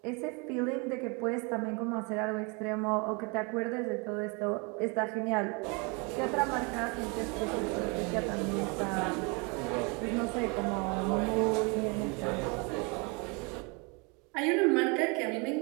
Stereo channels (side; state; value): left; quieter; 31.0 dB